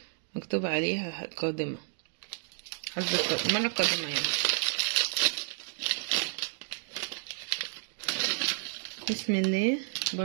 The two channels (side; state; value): left; silent; 57 dB below the other